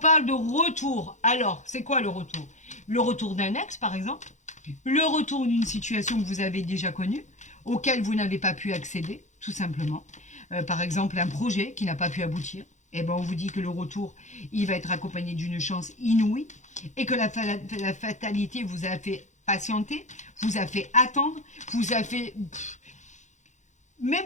de retour. Alors, c'est quoi le retour? Le retour d'un ex, par exemple, le retour d'une situation que vous avez déjà connue, auquel vous n'avez pas pu accéder, tout simplement. Par exemple, un projet qui n'a pas pu aboutir. Eh ben, on vous dit que le retour, il va être accompagné d'une chance inouïe et que la fatalité vous a fait patienter, vous a fait attendre, vous a fait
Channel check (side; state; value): right; late; 0.35 ms